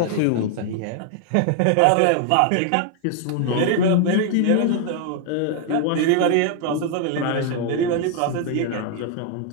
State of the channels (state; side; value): different; both; correlation 0.00